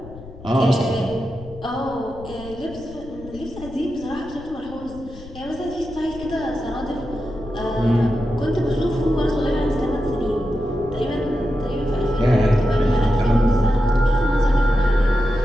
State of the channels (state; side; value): noise; left; rumble, 16 dB below the sound